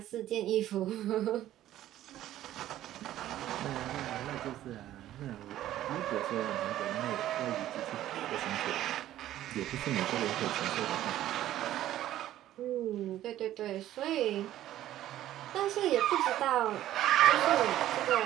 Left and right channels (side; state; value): left; quieter; 13.2 dB